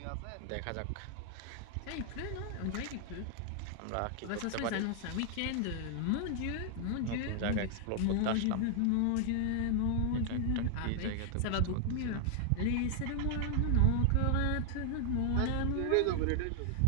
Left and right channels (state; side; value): different; both; correlation 0.00